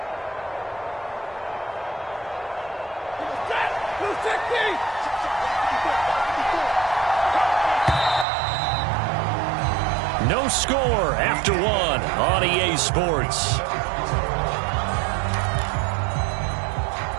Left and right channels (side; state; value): left; drops out; at 8.2 s